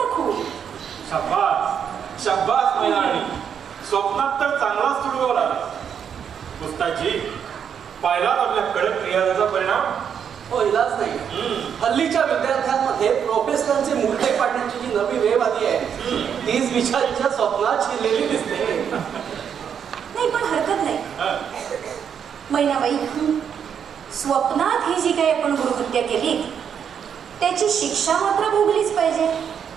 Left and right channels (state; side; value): quieter; left; 7.9 dB